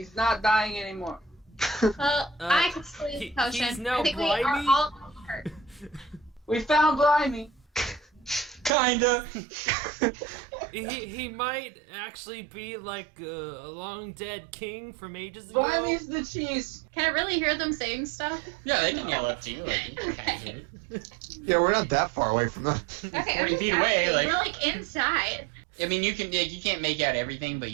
not dying anymore. Well, I could still use a potion. he's now I think we are Blimey? all hurt. We found Blimey. Kinda. He might actually be like a long dead king from ages ago. Blimey's the cheese. Can I really hear them saying stuff? Yeah, they can yell up to you. Like, you can kind of hear it. Yeah, we're not that far away from them. Okay, 40 feet away, we're like- inside. I mean, you can't make out everything, but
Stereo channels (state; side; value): drops out; left; at 8.7 s